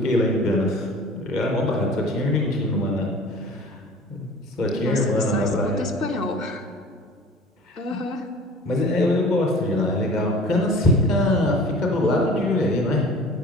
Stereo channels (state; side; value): normal; both; correlation 0.43